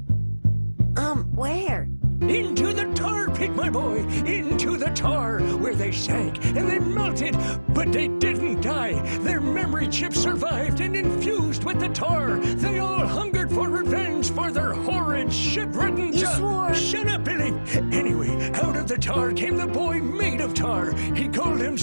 Where? Into the tar pit, my boy! Into the tar, where they sank and they melted, but they didn't die. Their memory chips survived and infused with the tar. They all hungered for revenge for their horrid, shit-ridden... You swore! Shut up, Billy! Anyway, out of the tar came the boy made of tar. He called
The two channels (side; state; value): both; inverted; correlation -1.00